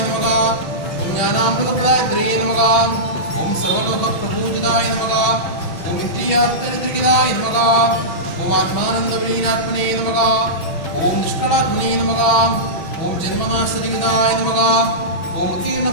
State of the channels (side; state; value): right; late; 5.2 ms